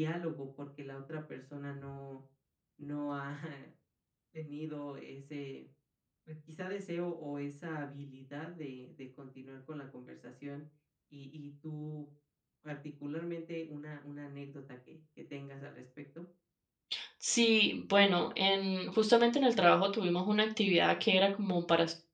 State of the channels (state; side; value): identical; both; correlation 1.00